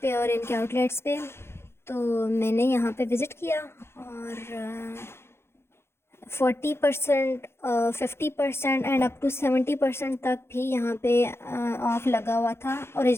और इनके आउटलेट्स पे। तो मैंने यहाँ पे विज़िट किया और 40%, 50% एंड अप टू 70% तक भी यहाँ पे ऑफ़ लगा हुआ था।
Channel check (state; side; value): late; right; 0.12 ms